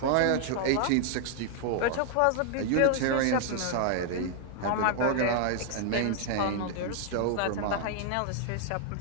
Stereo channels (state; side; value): different; both; correlation 0.00